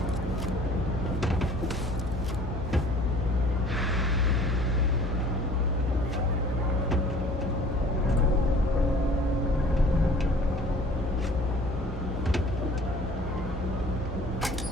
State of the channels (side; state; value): both; normal; correlation 0.50